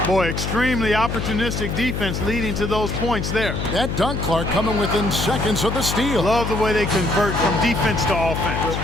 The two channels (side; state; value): left; noise; hum, 3 dB below the sound